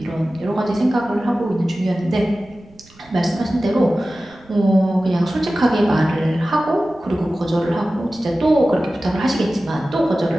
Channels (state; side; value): noise; right; rumble, 27 dB below the sound